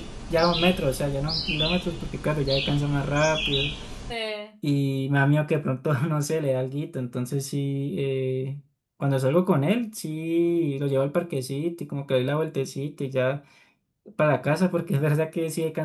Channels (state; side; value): identical; both; correlation 1.00